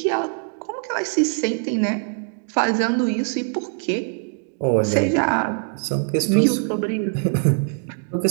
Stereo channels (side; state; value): left; silent; 56 dB below the other